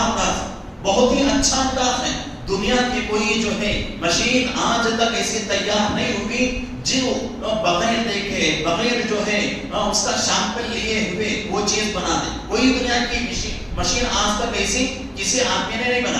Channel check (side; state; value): both; identical; correlation 1.00